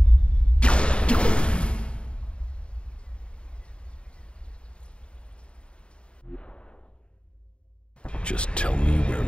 Just tell me where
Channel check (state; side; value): late; right; 0.055 ms